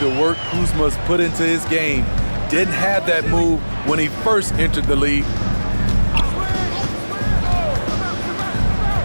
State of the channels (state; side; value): inverted; both; correlation -1.00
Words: work Kuzma's put into his game. Didn't have that move when he first entered the league.